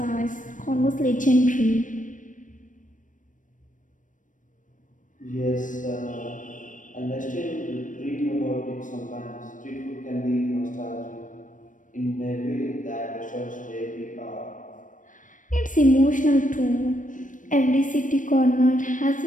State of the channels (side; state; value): right; late; 0.38 ms